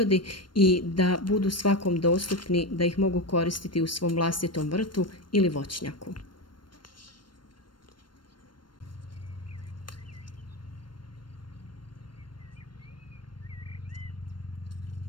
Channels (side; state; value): right; late; 0.72 ms